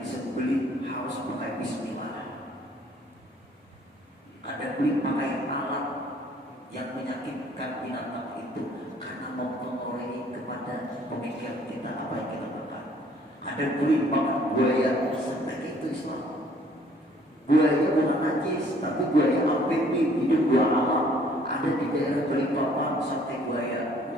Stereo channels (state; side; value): normal; both; correlation 0.59